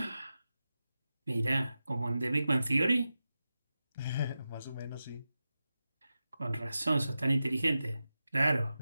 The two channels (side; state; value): both; inverted; correlation -0.92